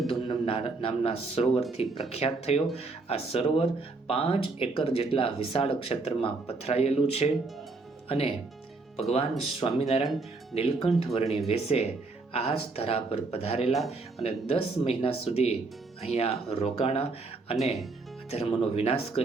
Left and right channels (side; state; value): left; quieter; 3.6 dB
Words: નામના સરોવરથી પ્રખ્યાત થયો. આ સરોવર 5 એકર જેટલા વિશાળ ક્ષેત્રમાં પથરાયેલું છે, અને ભગવાન સ્વામિનારાયણ નીલકંઠ વર્ણી વેશે આ જ ધરા પર પધારેલા અને 10 મહિના સુધી અહીંયા રોકાણા અને અધર્મનો વિનાશ